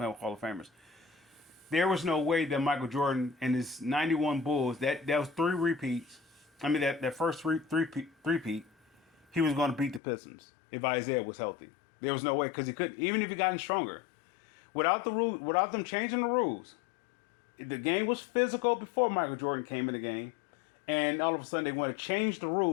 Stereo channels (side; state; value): right; drops out; at 10.0 s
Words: with Hall of Famers. There was no way that Michael Jordan and his 91 Bulls, that was 3 repeats. I mean, that first three-peat, he was going to beat the Pistons if Isaiah was healthy. There was no way, because he couldn't, even if he gotten stronger. Without them changing the rules, the game was physical before Michael Jordan came in the game, and all of a sudden they want to change the